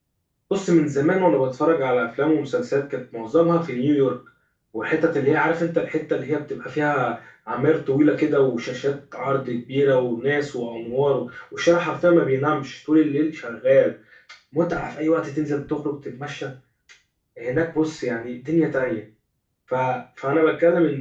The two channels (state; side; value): identical; both; correlation 1.00